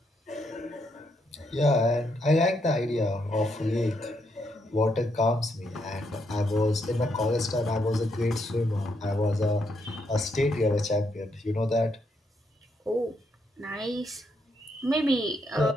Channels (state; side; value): normal; both; correlation 0.77